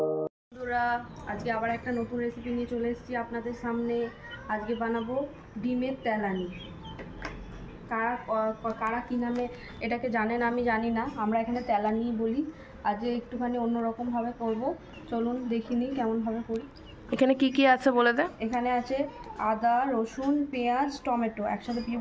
আবার একটা নতুন রেসিপি নিয়ে চলে এসেছি আপনাদের সামনে। আজকে বানাবো ডিমের তেলানি। কারা কী নামে এটাকে জানেন আমি জানি না, আমরা এখানে তেলানি বলি। আজকে একটুখানি অন্যরকমভাবে করব, চলুন দেখিনি কেমনভাবে করি। এখানে কি কি আছে বলে দে। এখানে আছে আদা, রসুন, পেঁয়াজ, টমেটো একসাথে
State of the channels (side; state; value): both; identical; correlation 1.00